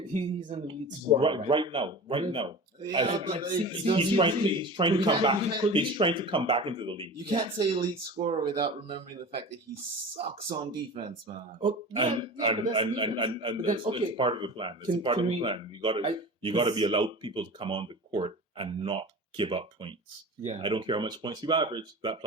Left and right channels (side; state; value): both; normal; correlation 0.34